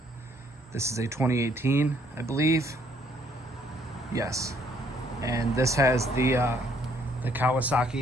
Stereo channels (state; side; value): normal; both; correlation 0.66